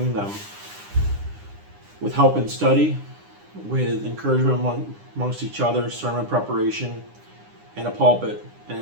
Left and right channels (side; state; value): left; late; 9.9 ms